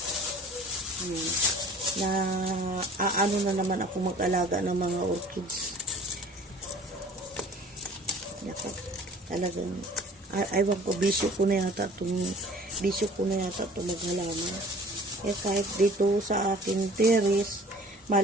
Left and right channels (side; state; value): both; normal; correlation 0.48